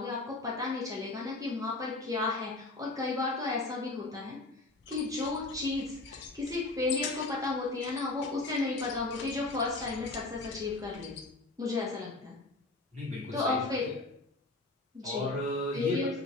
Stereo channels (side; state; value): right; quieter; 3.1 dB